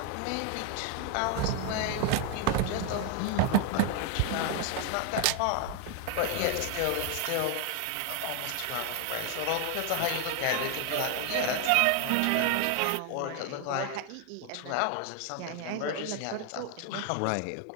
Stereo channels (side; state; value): both; different; correlation 0.00